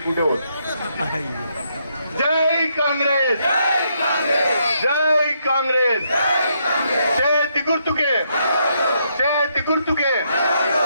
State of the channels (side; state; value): both; inverted; correlation -0.76